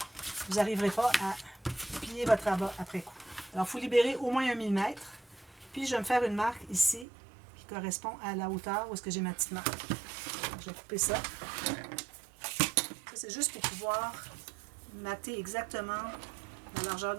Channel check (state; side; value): drops out; left; at 7.1 s